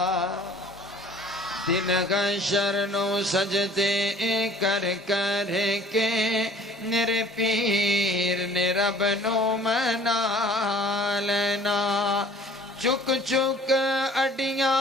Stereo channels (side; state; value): both; normal; correlation 0.51